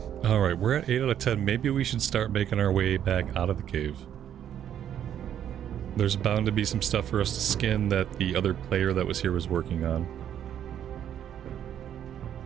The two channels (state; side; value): quieter; left; 10.0 dB